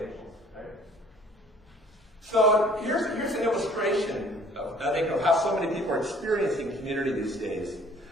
right? So here's an illustration of how so many people are experiencing community these days.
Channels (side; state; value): both; normal; correlation 0.54